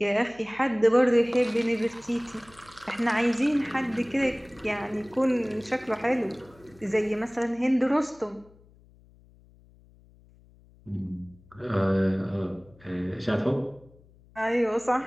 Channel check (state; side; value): noise; left; hum, 27 dB below the sound